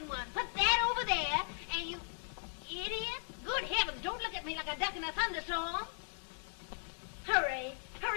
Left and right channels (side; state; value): right; silent; 53 dB below the other